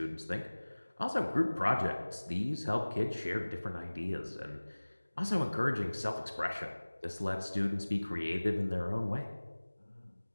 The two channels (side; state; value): both; inverted; correlation -1.00